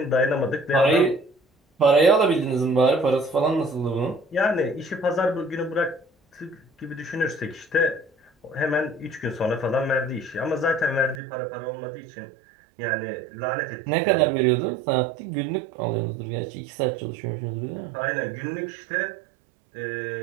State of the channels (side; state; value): left; drops out; at 11.2 s